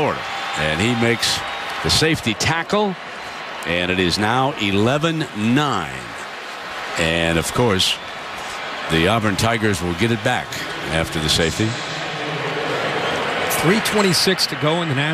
And he makes the safety tackle, and it is now 11-9. And, of course, the Auburn Tigers will get it back after the safety. 3:26 to go in the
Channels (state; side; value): identical; both; correlation 1.00